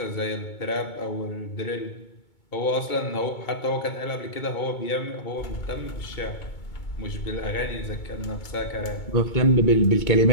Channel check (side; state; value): right; late; 2.2 ms